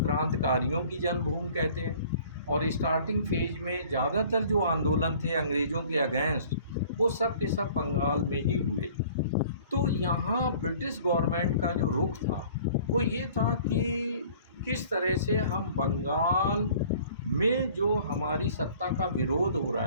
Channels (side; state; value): both; inverted; correlation -0.51